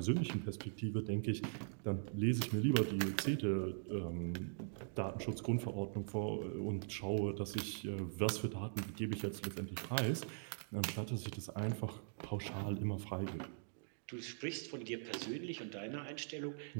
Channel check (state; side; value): silent; left; digital silence